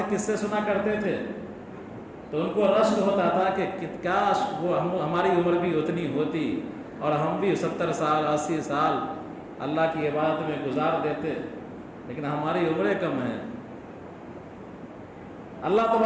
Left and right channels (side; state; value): both; identical; correlation 1.00